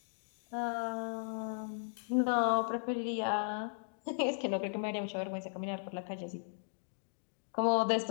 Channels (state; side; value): silent; right; digital silence